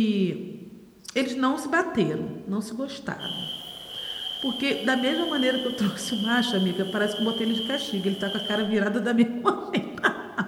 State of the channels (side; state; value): both; identical; correlation 1.00